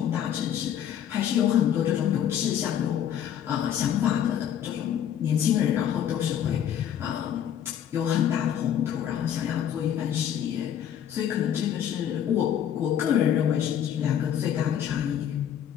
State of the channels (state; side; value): quieter; right; 9.7 dB